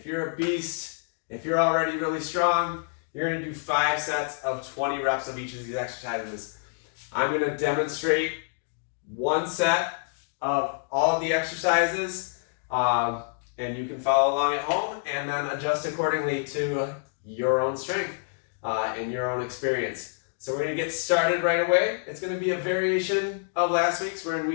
you're a beast, if you're already really strong, you're going to do 5 sets of 20 reps of each of these exercises. I'm going to demonstrate 1 set of all of the exercises, and you can follow along at home and then adjust accordingly to your own strength and your own experience. So we're going to get started right away. It's going to be a variation of last week's. We're in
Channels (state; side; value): silent; right; digital silence